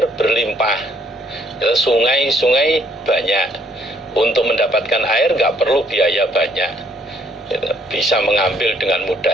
berlimpah, sungai-sungai banyak, untuk mendapatkan air nggak perlu biaya banyak, bisa mengambil dengan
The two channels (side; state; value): both; normal; correlation 0.65